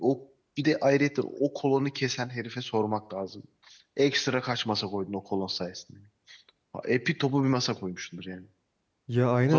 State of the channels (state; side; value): identical; both; correlation 1.00